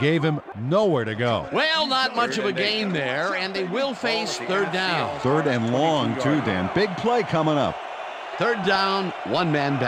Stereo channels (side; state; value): both; identical; correlation 1.00